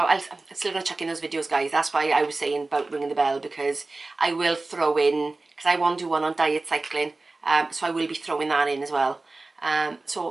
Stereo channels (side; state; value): left; quieter; 3.3 dB